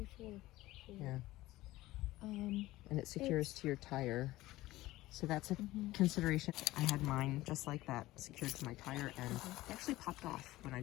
it. Yeah. And it secures to your tire. So that's a consideration. I had mine just like that, secured to my tire, and it actually popped off when I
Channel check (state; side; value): quieter; right; 17.4 dB